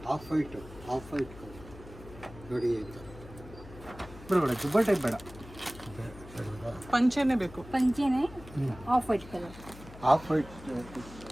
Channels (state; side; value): noise; left; hum, 17 dB below the sound